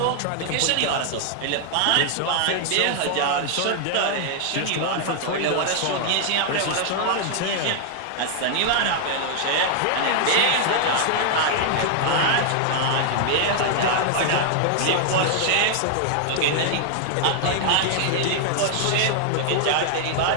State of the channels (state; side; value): different; both; correlation 0.00